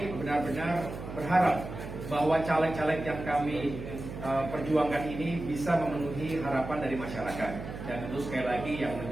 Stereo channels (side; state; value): right; noise; hum, 9 dB below the sound